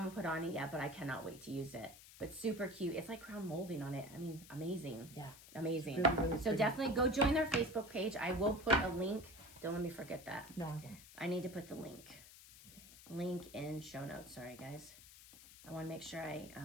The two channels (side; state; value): left; noise; hiss, 18 dB below the sound